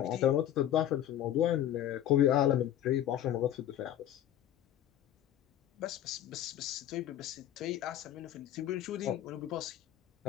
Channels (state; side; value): quieter; right; 11.6 dB